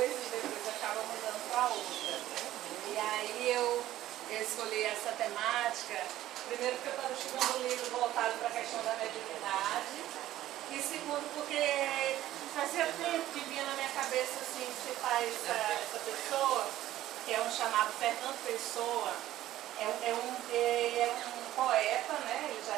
e depois acaba mudando para outra. E aí eu escolhi essa temática, primeiro porque eu estava estudando um livro voltado para a questão da mediunidade, e segundo porque fazia tempo que vinha na minha cabeça assim, citar essa pessoa, que é um chamado Fernando Pessoa. É um poeta, né? Ele já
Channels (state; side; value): quieter; left; 14.0 dB